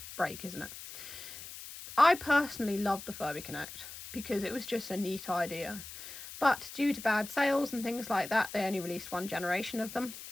break, isn't it? I personally loved the Furby Connect because it was just a neat idea. But due to bad sales and things like that, they only released one generation of them.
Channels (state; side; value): noise; left; hiss, 12 dB below the sound